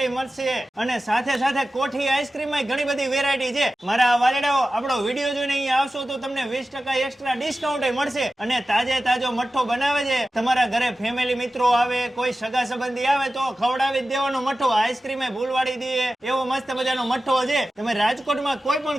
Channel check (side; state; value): both; normal; correlation 0.94